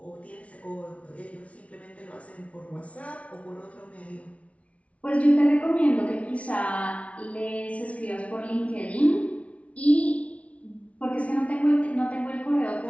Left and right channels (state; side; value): late; right; 0.064 ms